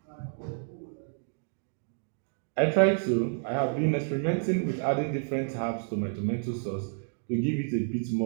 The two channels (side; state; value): left; silent; digital silence